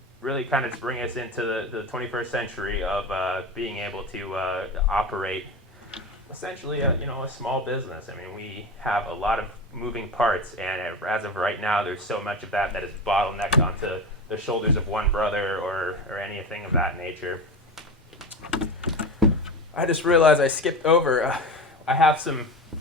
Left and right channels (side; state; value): both; normal; correlation 0.25